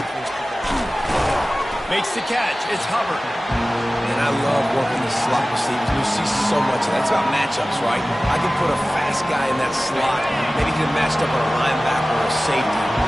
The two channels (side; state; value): both; normal; correlation 0.97